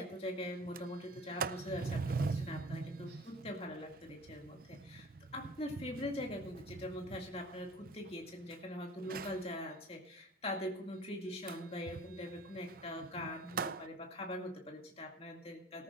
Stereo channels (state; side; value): normal; both; correlation 0.45